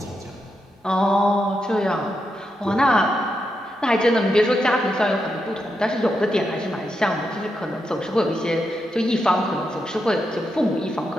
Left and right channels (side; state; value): both; normal; correlation 0.85